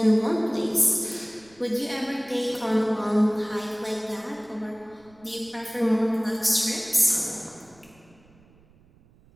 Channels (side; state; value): right; noise; rumble, 29 dB below the sound